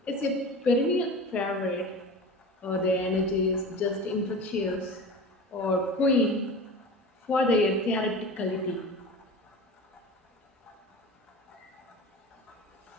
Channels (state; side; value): normal; both; correlation 0.33